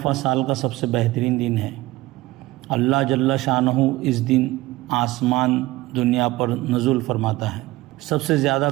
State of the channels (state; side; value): quieter; left; 18.7 dB